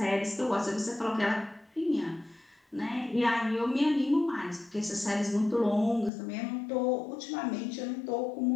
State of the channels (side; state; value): right; drops out; at 6.1 s